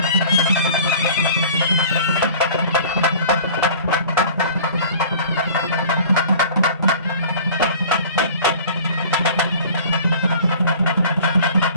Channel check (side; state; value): both; inverted; correlation -0.45